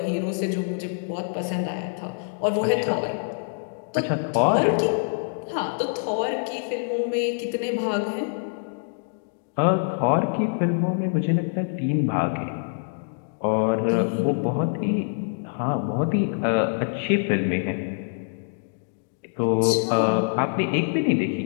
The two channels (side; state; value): right; silent; digital silence